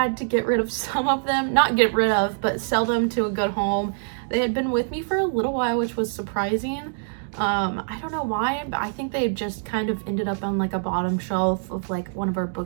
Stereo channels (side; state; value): left; silent; digital silence